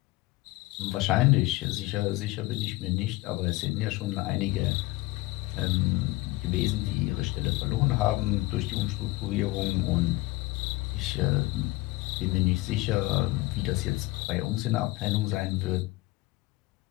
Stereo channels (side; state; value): right; quieter; 20.3 dB